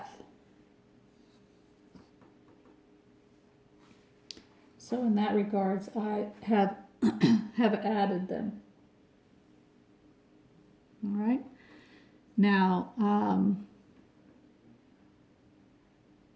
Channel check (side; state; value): both; identical; correlation 1.00